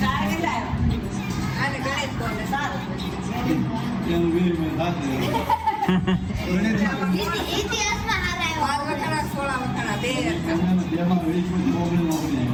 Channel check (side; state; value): both; identical; correlation 1.00